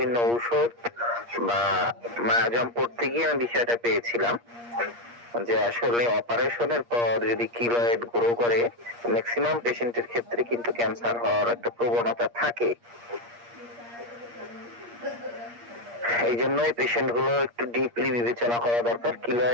ঔষধ বা মায়াজম পড়তে গিয়ে আমি বিষয়টা পেয়েছিলাম যে আসলে অপারেশনের পর যদি কিলয়েড গ্রো করে ম্যাক্সিমাম পেশেন্টের ক্ষেত্রে কিন্তু ক্যান্সার হওয়ার একটা প্রবণতা থাকে। এই জন্যই পেশেন্ট গুলো একটু ডিপলি বিবেচনা করা দরকার।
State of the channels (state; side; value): late; left; 8.5 ms